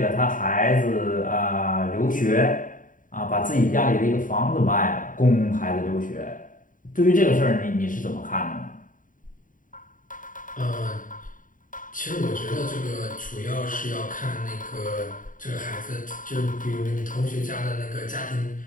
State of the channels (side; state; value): right; late; 0.39 ms